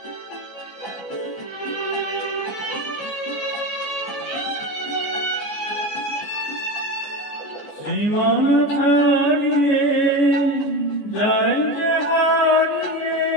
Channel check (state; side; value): late; right; 14 ms